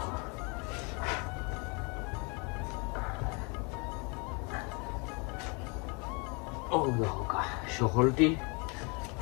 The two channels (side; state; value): right; quieter; 31.9 dB